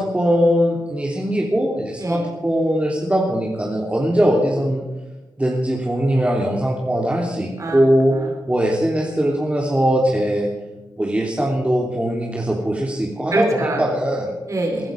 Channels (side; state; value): both; normal; correlation 0.89